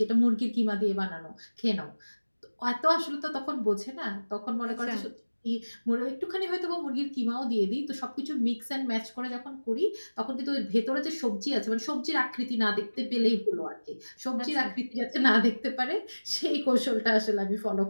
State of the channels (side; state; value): both; inverted; correlation -1.00